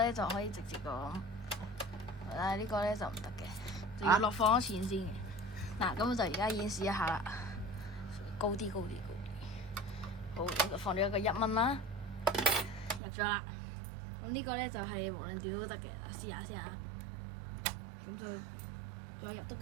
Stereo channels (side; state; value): left; drops out; at 13.0 s